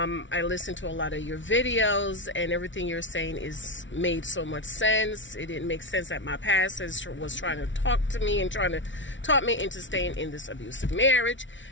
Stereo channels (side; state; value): right; late; 0.55 ms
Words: listened to a lot of your videos and everything you're saying made so much sense. It didn't make sense that my pastor was trying to talk to me and trying to talk me into staying in this abusive marriage.